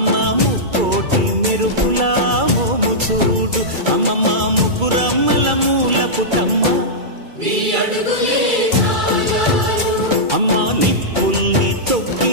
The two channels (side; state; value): left; late; 2.3 ms